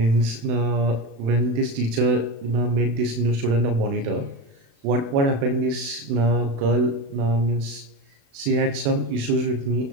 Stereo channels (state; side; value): late; left; 36 ms